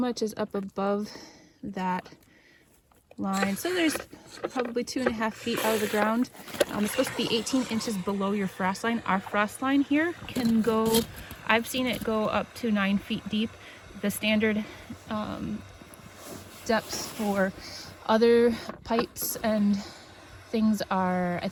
is up above that line. So there's probably 2.5 feet out of the ground. It's supposed to be 18 inches below your frost line. Our frost line here can go, I've seen it go up to 9 feet deep. The standard depths for other pipes and things are, I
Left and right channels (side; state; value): both; identical; correlation 1.00